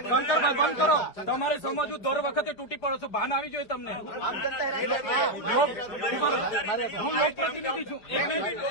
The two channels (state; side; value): late; right; 4.9 ms